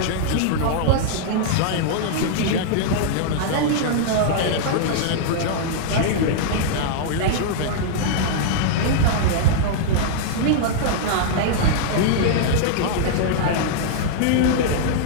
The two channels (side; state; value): both; different; correlation -0.01